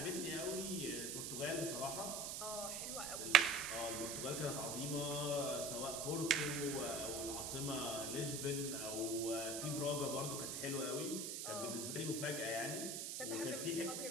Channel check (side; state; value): right; noise; hiss, 3 dB below the sound